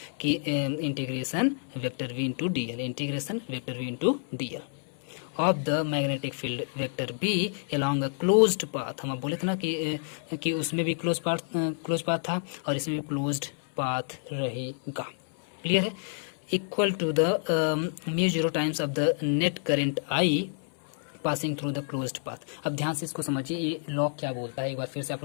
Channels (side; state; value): right; silent; 59 dB below the other